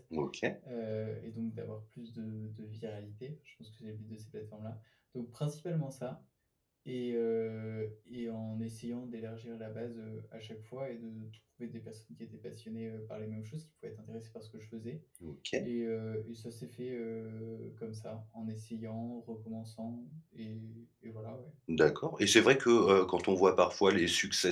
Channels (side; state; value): both; identical; correlation 1.00